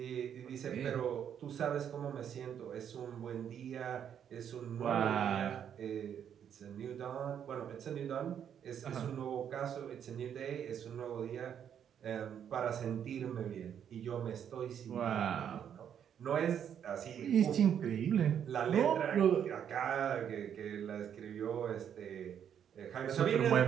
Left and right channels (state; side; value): quieter; left; 8.8 dB